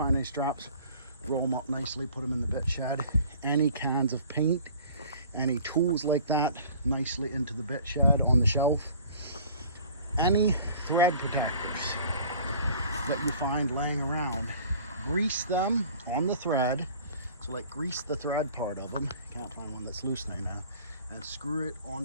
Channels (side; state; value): both; inverted; correlation -0.48